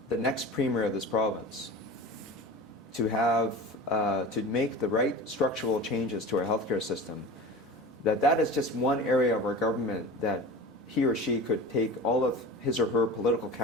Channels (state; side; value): normal; both; correlation 0.33